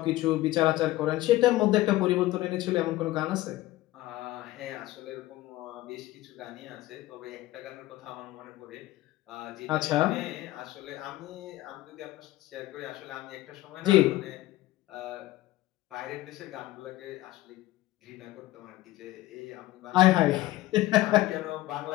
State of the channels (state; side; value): quieter; right; 16.7 dB